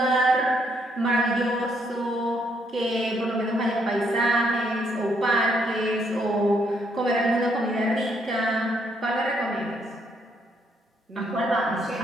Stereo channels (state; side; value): normal; both; correlation 0.72